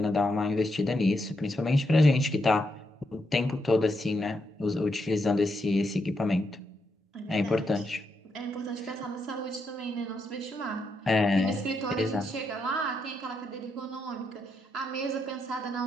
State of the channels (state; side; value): normal; both; correlation 0.81